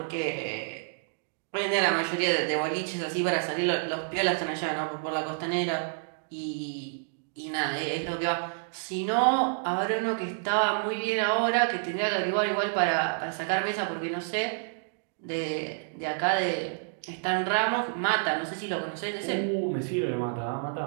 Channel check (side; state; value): left; silent; digital silence